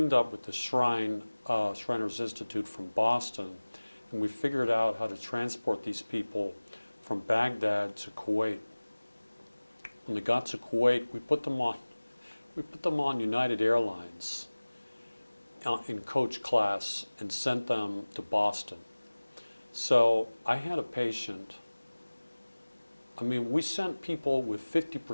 up with the Shriners Institute from Boston, and we figured out how to transport these people from Baghdad to Kuwait. When they got to Kuwait, we put them on United Airlines in coach class and sent them to Boston. So I had a patient. I mean, we sent people with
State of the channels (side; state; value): both; inverted; correlation -1.00